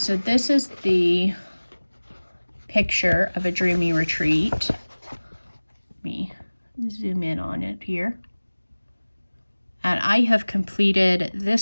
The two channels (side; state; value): both; inverted; correlation -1.00